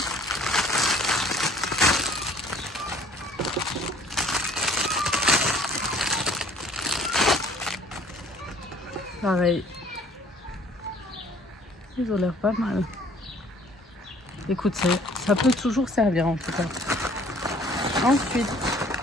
Pareil. Ils ont l'air pas mal. Écoute, ça peut toujours servir en tout cas. Ensuite,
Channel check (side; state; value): both; normal; correlation 0.54